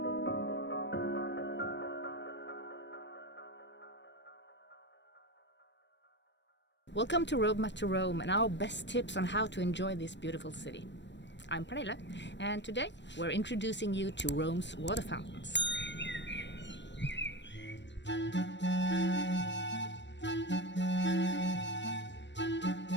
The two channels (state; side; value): late; right; 0.52 ms